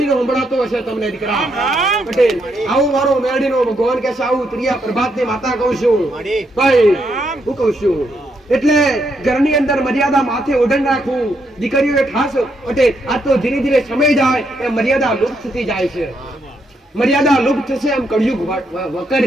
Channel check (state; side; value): normal; both; correlation 0.77